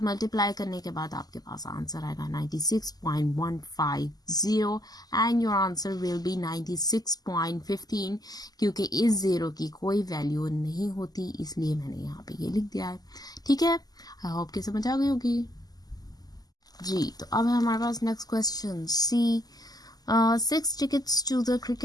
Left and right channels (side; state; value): right; late; 0.19 ms